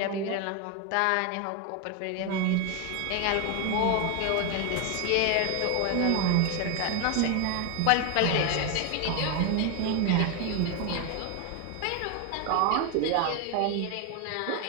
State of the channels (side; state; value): both; different; correlation 0.01